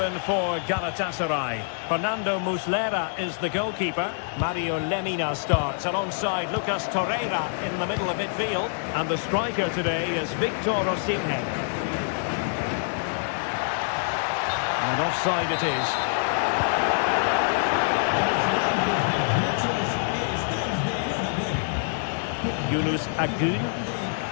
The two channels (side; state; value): right; silent; digital silence